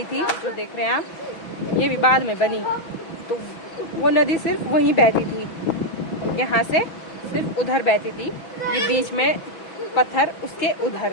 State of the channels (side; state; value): right; late; 6.1 ms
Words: थी, जो देख रहे हैं आप, ये भी बाद में बनी, तो वो नदी सिर्फ वहीं बहती थी, यहाँ से सिर्फ उधर बहती थी, ये बीच में पत्थर उसके